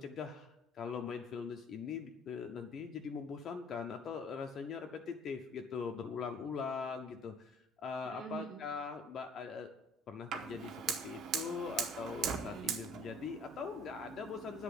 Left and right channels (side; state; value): both; normal; correlation 0.54